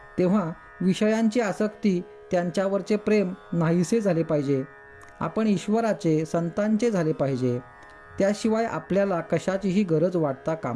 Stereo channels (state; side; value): identical; both; correlation 1.00